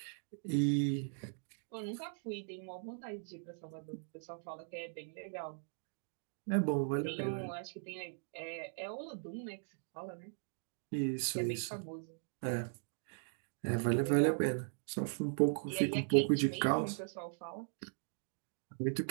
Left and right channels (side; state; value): left; silent; digital silence